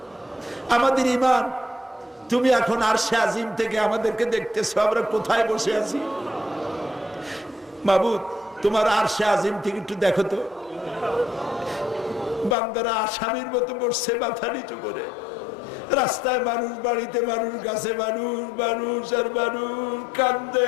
আমাদের ঈমান তুমি এখন আরশে আজিম থেকে আমাদেরকে দেখতেছো, আমরা কোথায় বসে আছি। মাবুদ তোমার আরশে আজিম থেকে একটু দেখো তো, বান্দারা আসামির মতো বসছে মাথা নিচু করে। রাস্তায় মানুষ, বাড়িতে মানুষ, গাছে মানুষ, মানুষ আর মানুষ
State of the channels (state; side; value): drops out; right; at 12.6 s